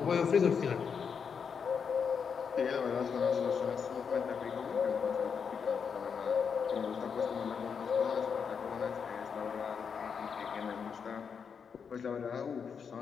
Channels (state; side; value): quieter; right; 6.5 dB